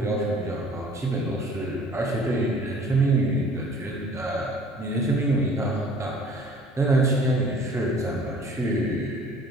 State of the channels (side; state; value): both; normal; correlation 0.51